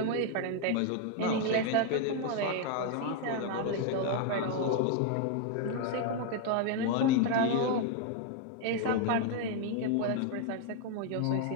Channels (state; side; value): different; both; correlation 0.00